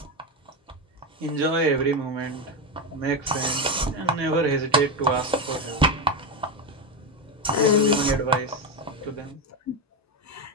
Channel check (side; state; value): both; normal; correlation 0.12